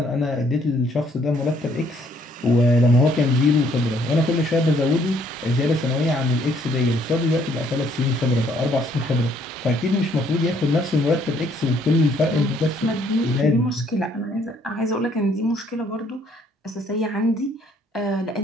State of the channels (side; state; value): both; normal; correlation 0.65